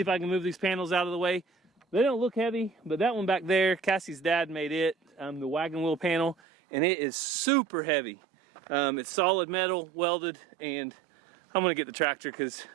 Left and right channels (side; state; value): left; drops out; at 6.4 s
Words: I can move these panels out of the way. They don't look heavy, but that one back there, Cassie's dad made it, the wagon wheel panel, and it is super heavy. It's solid metal, welded, and I'm gonna get the tractor because